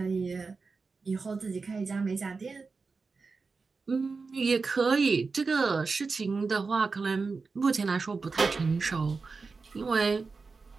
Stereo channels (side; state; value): left; quieter; 4.4 dB